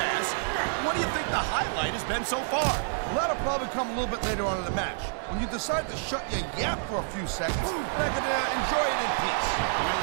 What do you think the highlight has been so far? Well, that'll probably come a little bit later on in the match, when you decide to shut your yap for a few seconds, and I can enjoy it in peace. Well,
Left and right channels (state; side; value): silent; left; digital silence